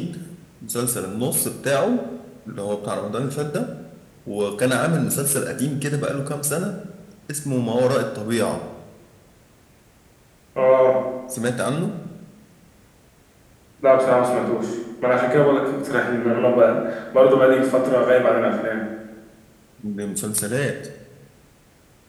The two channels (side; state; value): both; identical; correlation 1.00